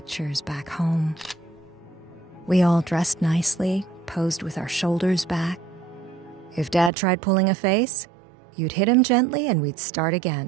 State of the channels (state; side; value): drops out; left; at 6.9 s